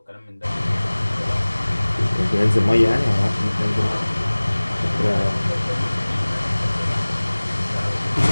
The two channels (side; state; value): both; inverted; correlation -1.00